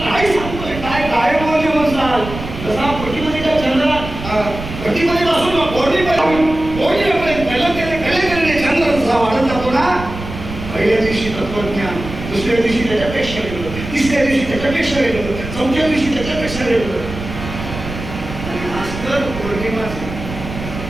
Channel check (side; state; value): right; noise; rumble, 9 dB below the sound